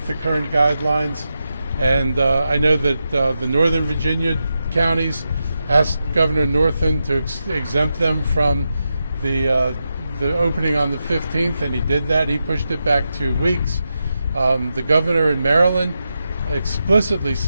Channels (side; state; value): both; inverted; correlation -0.88